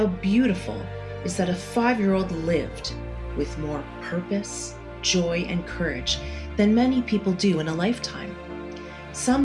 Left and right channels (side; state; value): both; identical; correlation 1.00